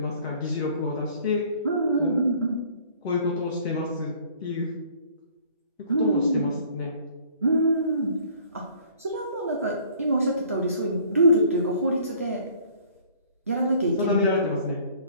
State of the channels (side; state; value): both; inverted; correlation -0.55